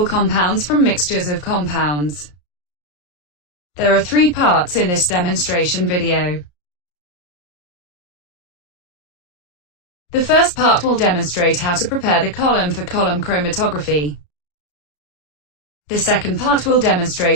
compounds from mixtures of compounds. There are 3 parts in this demonstration video. The first part will demonstrate how to prepare the column for column chromatography. The second part will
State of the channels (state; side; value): late; right; 34 ms